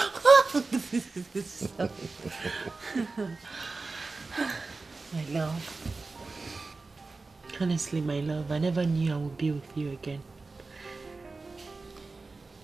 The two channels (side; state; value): left; quieter; 3.8 dB